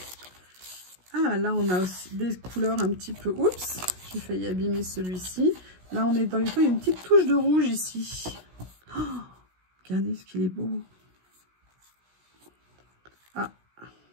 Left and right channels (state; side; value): late; left; 16 ms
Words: Ah, là, on a aussi des couleurs un petit peu... Oups, j'ai failli abîmer celui-ci. Là, on est dans les tons. Il y a une petite touche de rouge ici. Oh, regardez ce qu'il est beau. Ah,